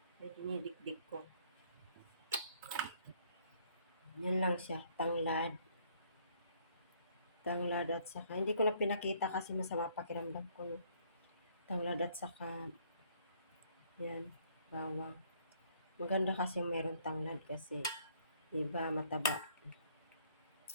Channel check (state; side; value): inverted; both; correlation -0.64